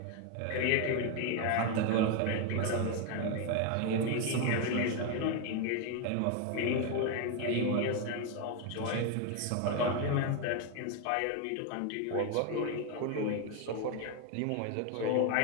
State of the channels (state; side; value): different; both; correlation 0.01